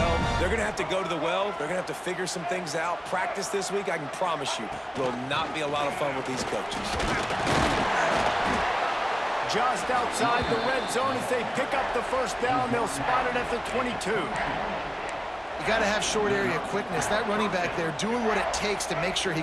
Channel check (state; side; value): identical; both; correlation 1.00